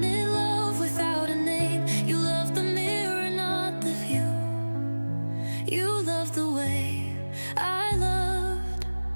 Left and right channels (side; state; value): both; inverted; correlation -1.00